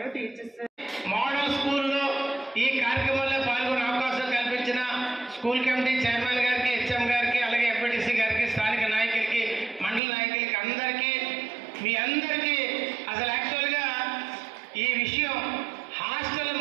టీచర్స్. మోడల్ స్కూల్లో ఈ కార్యక్రమంలో పాల్గొనే అవకాశం కల్పించిన స్కూల్ కమిటీ చైర్మన్ గారికి, హెచ్ఎం గారికి, అలాగే ఎంపీటీసీ గారికి, స్థానిక నాయకులకి, మండల నాయకులకి అందరికీ, మీ అందరికీ అసలు యాక్చువల్గా ఈ విషయం హాస్టల్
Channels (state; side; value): drops out; left; at 10.0 s